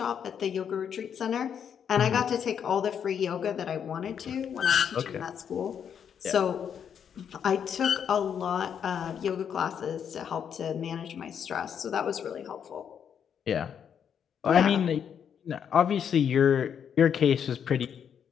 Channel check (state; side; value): quieter; right; 8.0 dB